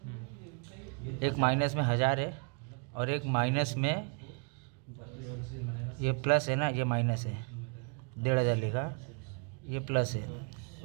एक माइनस में 1000 है, और एक माइनस में ये प्लस है ना, ये माइनस है, 1500 लिखा, ये प्लस है,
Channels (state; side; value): quieter; left; 38.6 dB